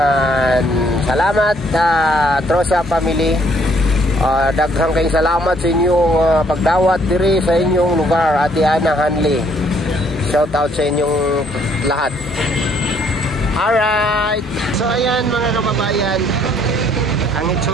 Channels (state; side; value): normal; both; correlation 0.65